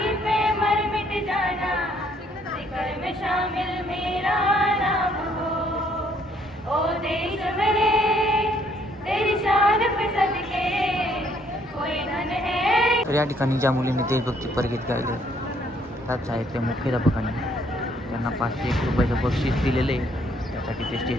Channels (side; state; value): both; normal; correlation 0.66